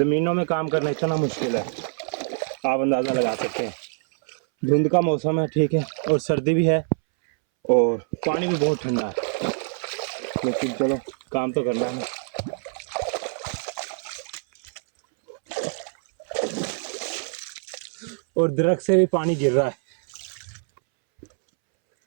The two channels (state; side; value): silent; left; 62 dB below the other